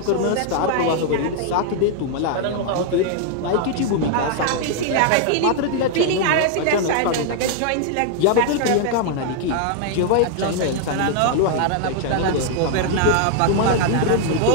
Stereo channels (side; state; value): both; different; correlation 0.00